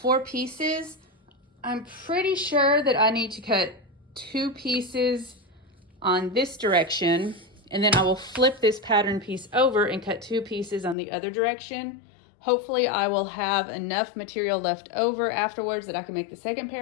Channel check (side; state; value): right; drops out; at 11.0 s